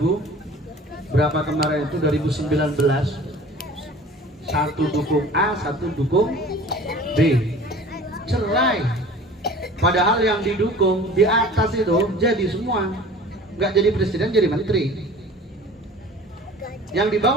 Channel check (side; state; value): both; normal; correlation 0.44